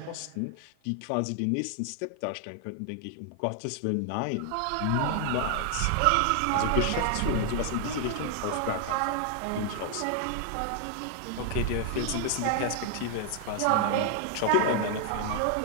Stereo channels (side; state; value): both; different; correlation 0.00